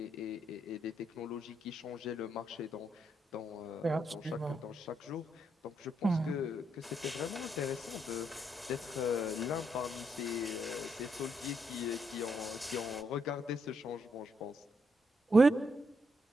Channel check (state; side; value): normal; both; correlation 0.78